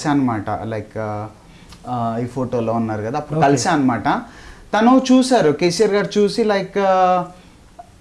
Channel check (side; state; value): both; identical; correlation 1.00